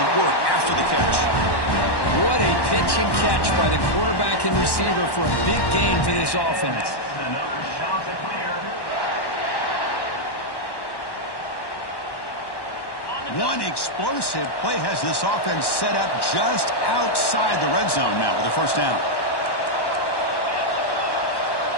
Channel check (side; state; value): right; late; 1.1 ms